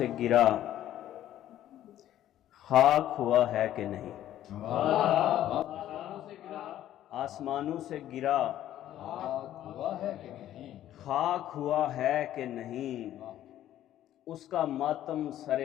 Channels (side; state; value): right; quieter; 12.4 dB